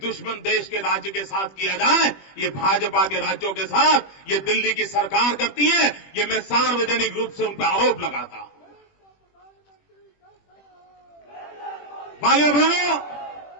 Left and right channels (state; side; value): late; right; 21 ms